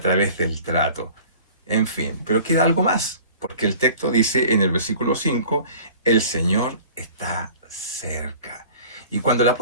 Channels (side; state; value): both; inverted; correlation -0.46